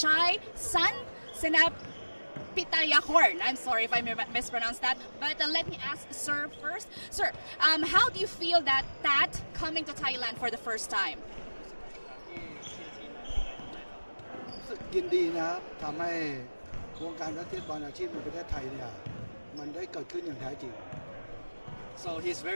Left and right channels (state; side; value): inverted; both; correlation -1.00